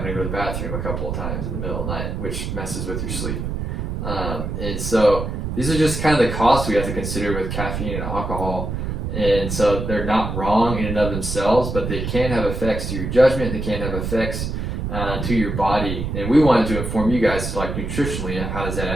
to go to the bathroom a couple of times in the middle of the night, which messes with your sleep. And so these are just kind of the costs we have to consider with caffeine and alcohol. And so they're not wrong in and of themselves, but they can have effects to your judgment. They can have effects to your body. And we wanted to inform you guys, like, nutritionally, how does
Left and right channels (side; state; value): right; noise; rumble, 4 dB below the sound